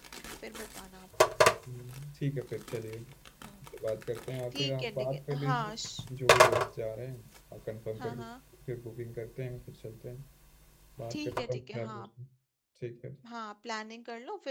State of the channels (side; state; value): both; identical; correlation 1.00